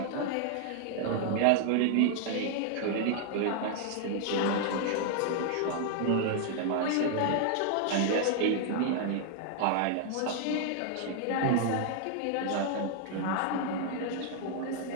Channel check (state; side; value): different; both; correlation 0.00